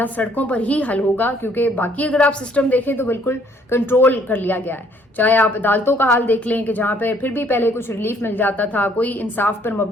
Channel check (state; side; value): normal; both; correlation 0.63